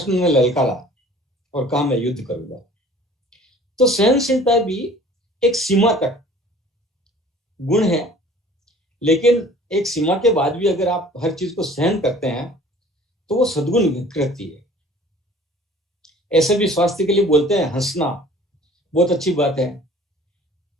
ने ललकारा और कहा मैं युद्ध करूंगा। तो सहनशीलता भी एक सीमा तक गुण है, लेकिन एक सीमा के बाद भी अगर आप हर चीज को सहन करते हैं तो वो सद्गुण विकृति है। ऐसे भी स्वास्थ्य के लिए बोलते हैं, हंसना बहुत अच्छी बात है,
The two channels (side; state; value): both; normal; correlation 0.49